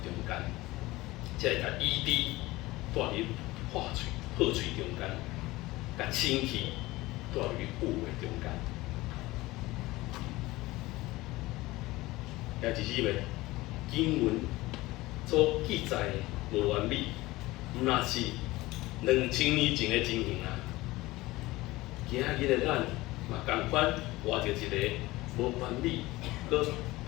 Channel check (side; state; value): right; quieter; 19.5 dB